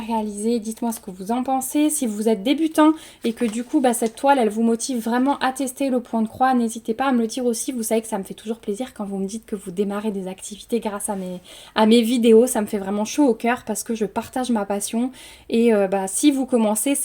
dites-moi ce que vous en pensez. Si vous êtes débutant et que du coup, cette toile, elle vous motive vraiment à tester le point de croix, n'hésitez pas à me le dire aussi. Vous savez que ça me fait toujours plaisir quand vous me dites que vous démarrez des activités grâce à mes vidéos. Ça me fait vraiment chaud au cœur parce que je partage ma passion et si vous commencez,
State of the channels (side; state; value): both; identical; correlation 1.00